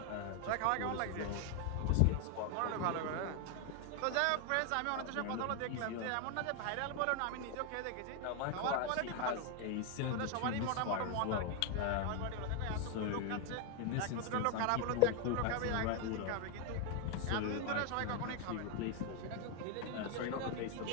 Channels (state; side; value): different; both; correlation 0.01